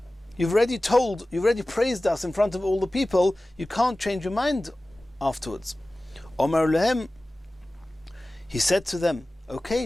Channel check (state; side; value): normal; both; correlation 0.97